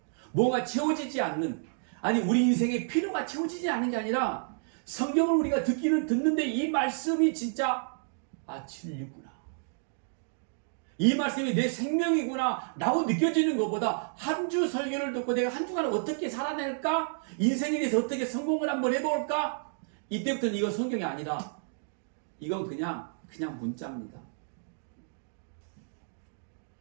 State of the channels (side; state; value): left; silent; digital silence